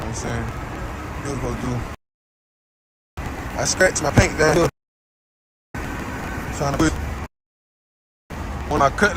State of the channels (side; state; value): both; identical; correlation 1.00